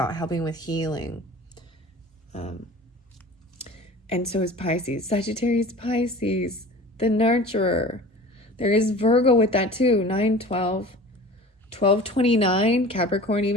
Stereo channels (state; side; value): normal; both; correlation 0.40